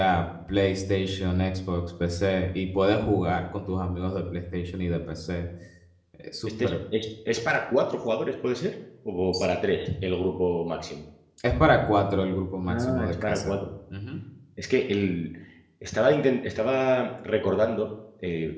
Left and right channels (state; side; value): identical; both; correlation 1.00